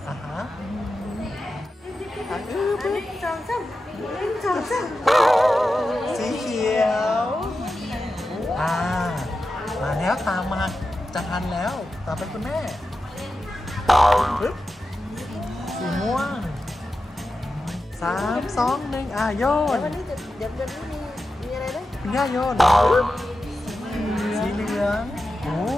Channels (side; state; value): both; normal; correlation 0.91